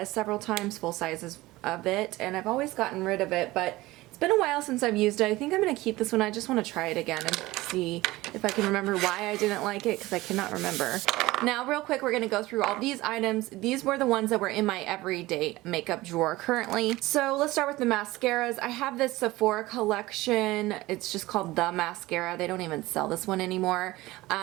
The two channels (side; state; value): left; quieter; 19.0 dB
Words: several times, full sizes of it, and I've always gotten rid of it, but it's been a while since I've used it. I think I'm going to keep this one. I just want to try it again and see if I can remember why I didn't like it, because I cannot remember. Now, real quick, we're going to go through all these items. These were the ones that were in my everyday makeup drawer currently. So let's start with the mascaras. I have this Sephora collection. It's just called The Mascara. They don't even sell this one anymore.